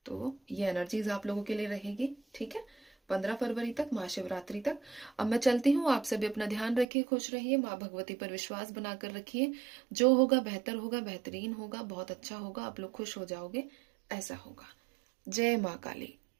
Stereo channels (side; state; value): left; drops out; at 6.9 s